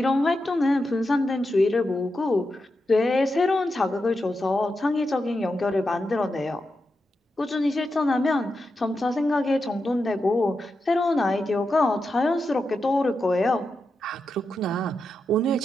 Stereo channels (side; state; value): both; normal; correlation 0.88